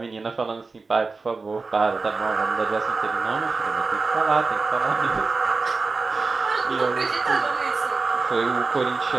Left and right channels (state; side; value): quieter; left; 4.1 dB